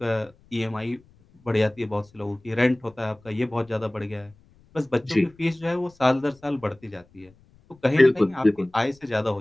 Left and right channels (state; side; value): noise; left; rumble, 30 dB below the sound